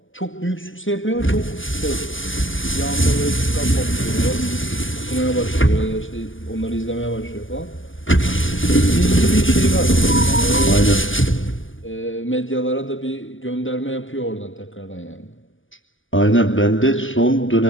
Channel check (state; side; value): late; right; 0.58 ms